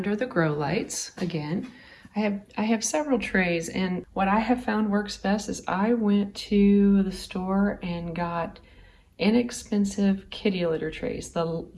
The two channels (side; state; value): both; identical; correlation 1.00